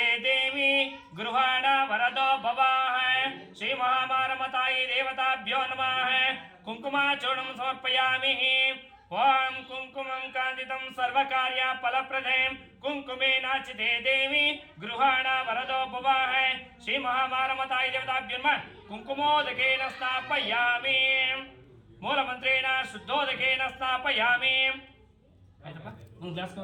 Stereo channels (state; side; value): identical; both; correlation 1.00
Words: देवी गृहाण वरदो भवाः श्री महामारमतायै देवताभ्यो नमः कुंकुमाचूर्णं समर्पयामि ओम कुंकुमं कांतितं सर्वकार्य फलप्रदे कुंकुमेनार्चिते देवी गृहाण वरदो भवाः श्री महामारमतायै देवताभ्यो नमः कुंकुमोदकेन स्थापयामि मूलमंत्रेण शुद्धोदकेन स्थापयामि ಆಯ್ತಪ್ಪ ಒಂದು ಗ್ಲಾಸ್